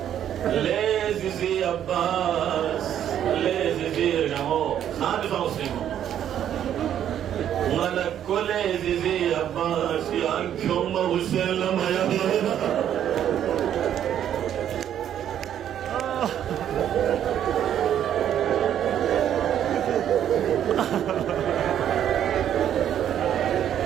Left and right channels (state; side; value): quieter; left; 10.2 dB